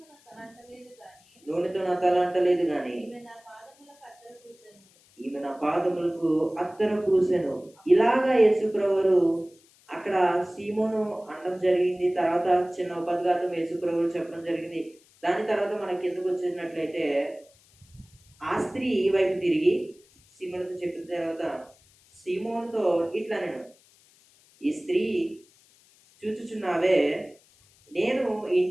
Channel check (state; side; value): noise; left; hiss, 30 dB below the sound